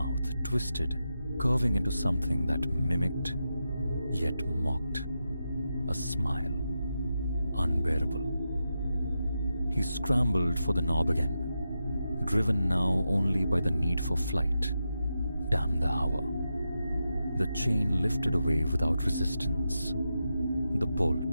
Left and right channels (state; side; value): inverted; both; correlation -0.88